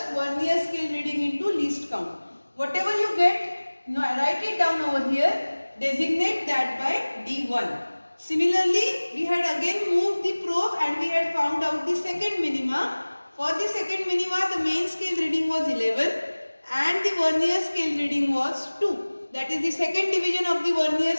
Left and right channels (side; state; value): both; inverted; correlation -1.00